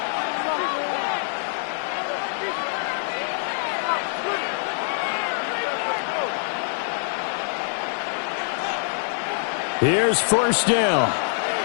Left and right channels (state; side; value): silent; right; digital silence